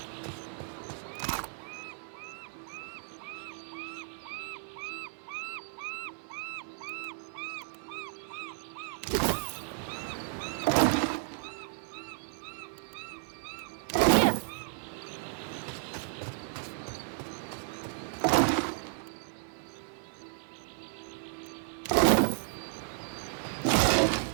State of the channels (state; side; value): silent; left; digital silence